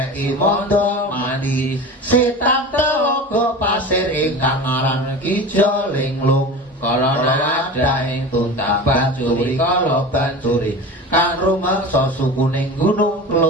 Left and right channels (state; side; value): normal; both; correlation 0.32